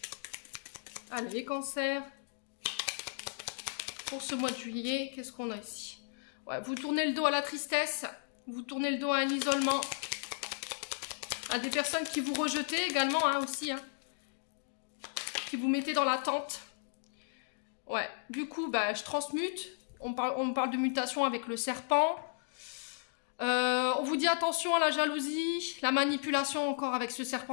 Allez, les cancers. Pour ce mois de juillet, qu'est-ce qu'on a ici? Ouais, vous tournez le dos à la tristesse. Vous tournez le dos à un isolement. À des personnes qui vous rejetez également, hein, aussi, hein. Qui vous mettez dans l'attente. Ouais, du coup, bah, je transmute. On parle de mutation avec le serpent. On vous dit attention à la jalousie, la manipulation encore avec ce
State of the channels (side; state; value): right; silent; digital silence